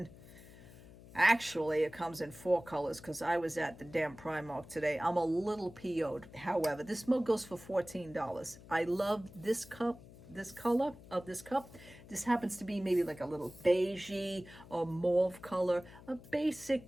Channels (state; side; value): noise; left; hum, 19 dB below the sound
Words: actually, it comes in 4 colors because I was at the damn Primark today. I'm a little PO'd. However, this mug goes for $14. I love this cup, this color of this cup. This happens to be maybe like a little beigey or mauve color, a